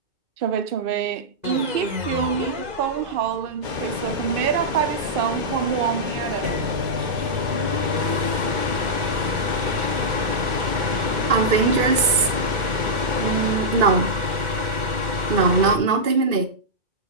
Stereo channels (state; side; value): late; left; 2.5 ms